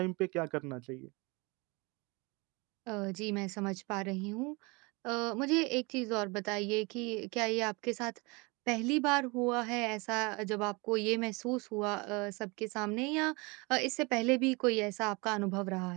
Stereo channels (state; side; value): quieter; left; 27.4 dB